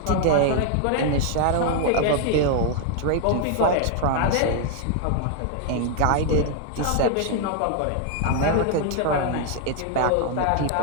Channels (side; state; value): both; different; correlation 0.00